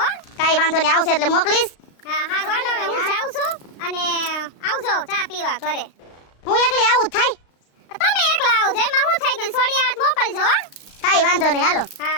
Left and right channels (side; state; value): right; late; 35 ms